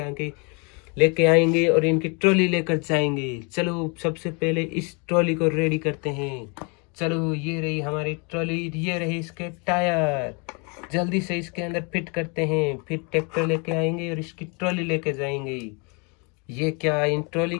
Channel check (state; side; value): quieter; right; 33.0 dB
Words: लेके आएंगे और इनकी ट्रॉली लेकर जाएंगे। चलो सबसे पहले इस ट्रॉली को रेडी करते हैं। चलो ये रही हमारी ट्रॉली, ये रही इसके टायर, जल्दी से इसके अंदर फिट करते हैं, फिर ट्रैक्टर लेके आएंगे और इसकी ट्रॉली लेके जाएंगे। ये क्या, इन ट्रॉली